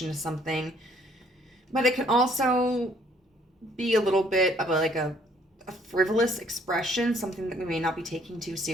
to something. But it can also be a little bit of a frivolous expression, something that we may not be taking too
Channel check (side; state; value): both; normal; correlation 0.62